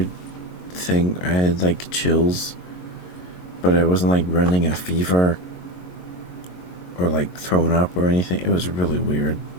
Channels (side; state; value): right; late; 22 ms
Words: thing. I had like chills, but I wasn't like running a fever or like throwing up or anything. It was really weird